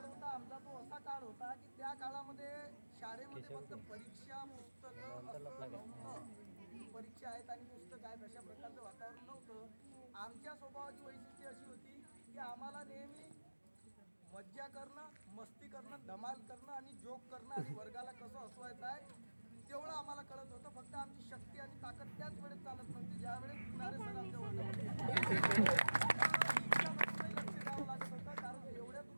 होता आमचा, तो असा काळ होता की त्या काळामध्ये शाळेमध्ये फक्त परीक्षा, पुस्तकं नव्हतं. परीक्षा आहेत आणि पुस्तक आहेत अशा प्रकारचं वातावरण नव्हतं. आमच्या स्वभावाची वैशिष्ट्ये अशी होती की आम्हाला नेहमी मज्जा करणं, मस्ती करणं, धमाल करणं आणि जोक करणं आणि वर्गाला कसं हसवायचं आहे तेवढं आम्हाला कळत होतं. फक्त आमची शक्ती आणि ताकद त्याच वेळेस चालत नव्हती, ज्या वेळेस किनारे सर आमच्या वर्गामध्ये लक्ष द्यावं लागत होतं, कारण एवढ्या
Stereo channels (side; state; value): both; inverted; correlation -1.00